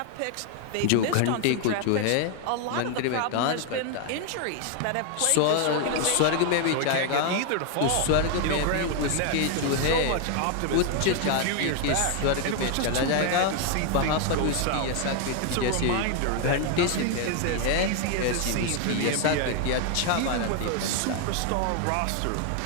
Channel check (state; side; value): different; both; correlation 0.00